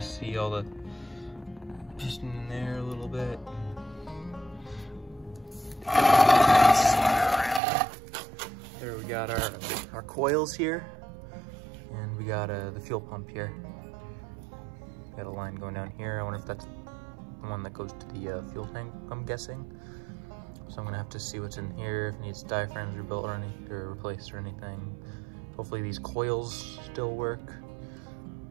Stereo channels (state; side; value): drops out; left; at 7.6 s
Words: see all the piston in there a little bit. There we got our coils here, and we got the fuel pump here. Got a line going down here. I wonder if that's the one that goes to the fuel tank, I'm guessing. So I'm gonna have to see what's in here, if it needs diaphragms rebuilt or replaced or anything. Hopefully these coils still work.